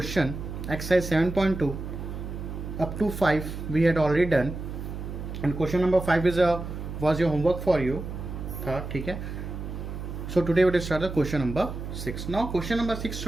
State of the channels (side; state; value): right; noise; hum, 7 dB below the sound